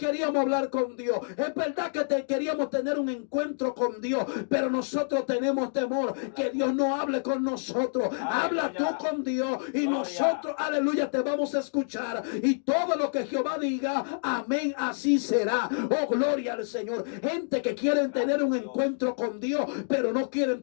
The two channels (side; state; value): right; silent; digital silence